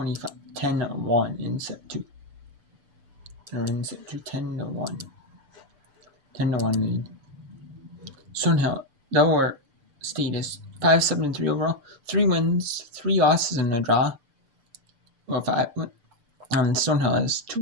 in set 2. They're in set 2 10-1. 10-1 lead. Stonehill, Delaware State is 5-7-3 overall. 3 wins, 3 losses, and a draw. Well, 5. Stonehill has 2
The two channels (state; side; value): late; left; 6.8 ms